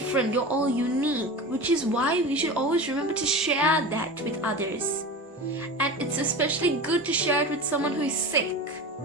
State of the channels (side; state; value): both; normal; correlation 0.30